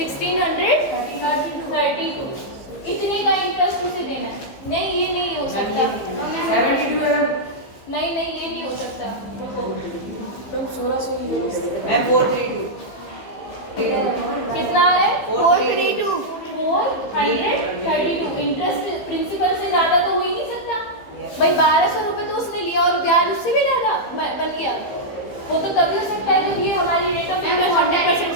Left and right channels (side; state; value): right; late; 15 ms